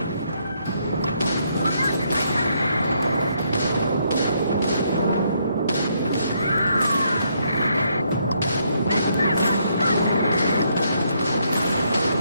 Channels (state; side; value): inverted; both; correlation -0.73